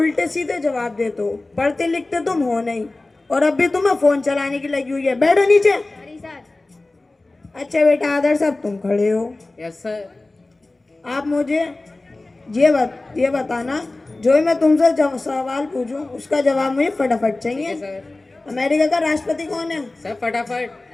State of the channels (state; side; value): quieter; right; 3.0 dB